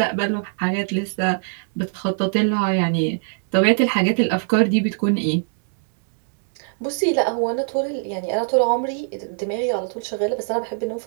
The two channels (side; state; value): left; silent; 64 dB below the other